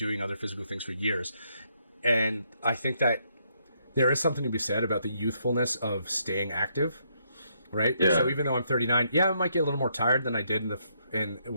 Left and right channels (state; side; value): inverted; both; correlation -0.74